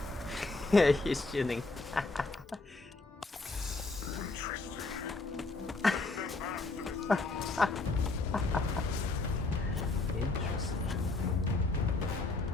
fold. He's chilling.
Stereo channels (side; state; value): right; quieter; 3.4 dB